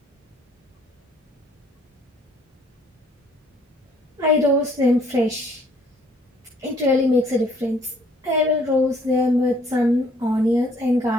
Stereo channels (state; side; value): normal; both; correlation 0.62